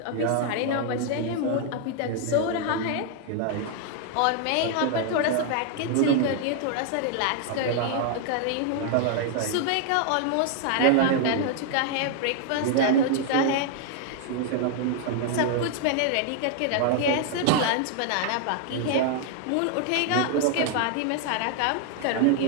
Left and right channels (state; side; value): different; both; correlation 0.00